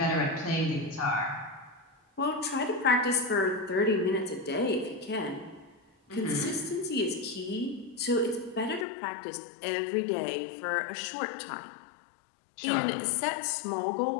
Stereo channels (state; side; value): drops out; right; at 8.8 s